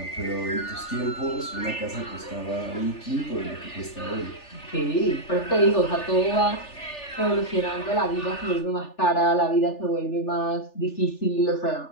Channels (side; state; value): right; late; 3.4 ms